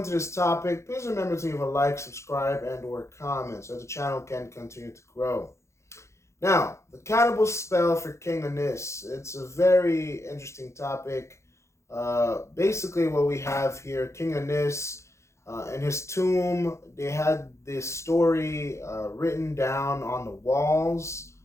this topic, please remember to leave a like, subscribe, and or comment so the channel can continue to grow. Now, the cannibal spell for King Unis, it's a very interesting topic. Basically what we have here, King Unis in his tomb, they had this story written down on the walls.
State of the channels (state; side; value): late; right; 0.14 ms